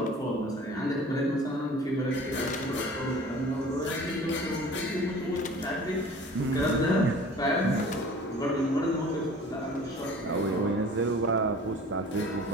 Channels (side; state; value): both; normal; correlation 0.45